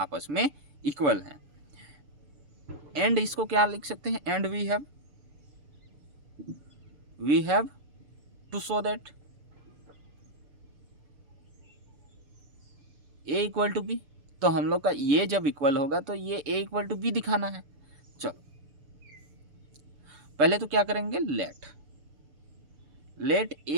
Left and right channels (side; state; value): left; late; 6.8 ms